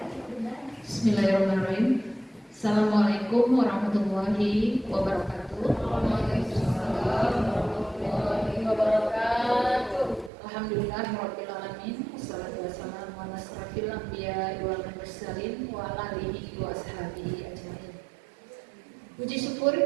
Bismillahirrahmanirrahim. Assalamualaikum warahmatullahi wabarakatuh. Alhamdulillahirabbil alamin. Wassalatu wassalamu ala asrofil anbiya'i wal mursalin wa ala alihi wa ashabihi ajmain. Puji syukur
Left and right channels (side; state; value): left; drops out; at 10.3 s